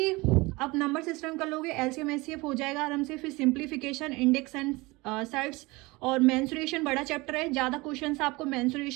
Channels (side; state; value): left; quieter; 23.1 dB